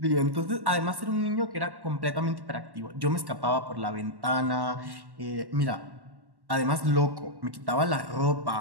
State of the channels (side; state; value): left; late; 1.1 ms